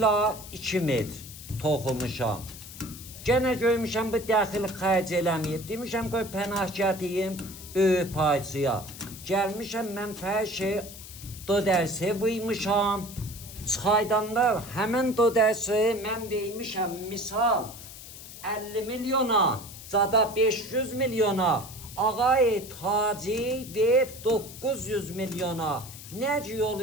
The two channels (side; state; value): left; noise; hiss, 14 dB below the sound